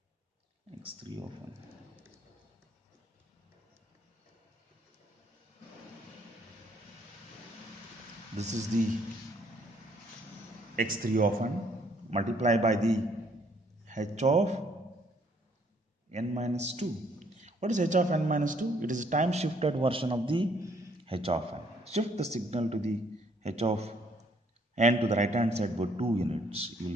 x3 of n. This is the x3 of n multiplied by the h of n minus 2. What is h of n minus 2? It is a time shifted version of the h of n. Shift the signal to the h of n to the right hand side for 2 units. You will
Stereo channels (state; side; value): normal; both; correlation 0.66